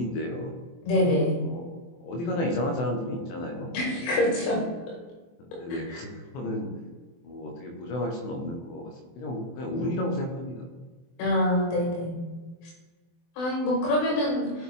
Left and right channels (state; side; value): late; right; 24 ms